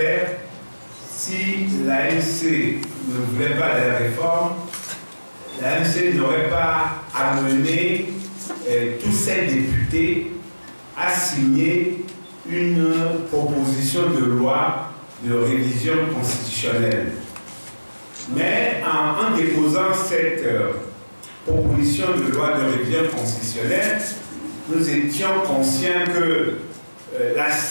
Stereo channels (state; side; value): inverted; both; correlation -1.00